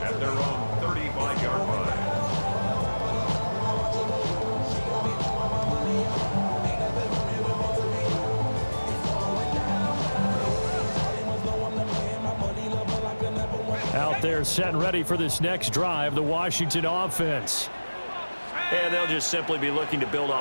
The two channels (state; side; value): inverted; both; correlation -1.00